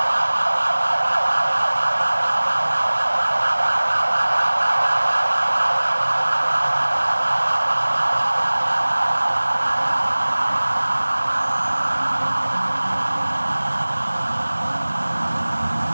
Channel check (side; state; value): both; inverted; correlation -1.00